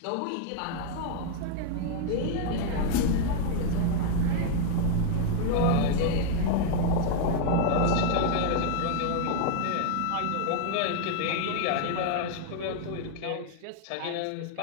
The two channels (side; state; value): both; different; correlation 0.00